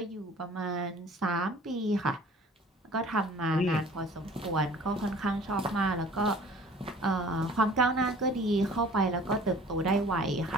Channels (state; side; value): normal; both; correlation 0.49